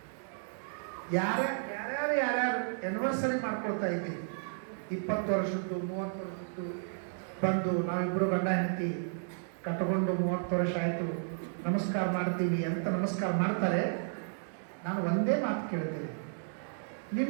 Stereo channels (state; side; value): silent; left; digital silence